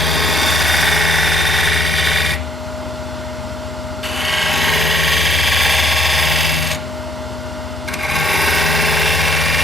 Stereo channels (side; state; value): both; normal; correlation 0.65